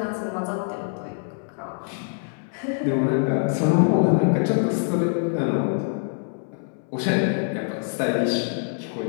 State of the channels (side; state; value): right; silent; 62 dB below the other